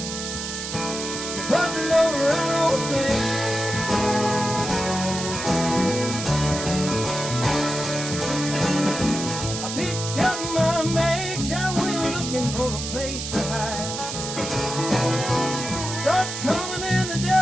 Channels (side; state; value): right; noise; hiss, 6 dB below the sound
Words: Put the load right on me. I picked up my bags, I went looking for a place to hide. Start coming and the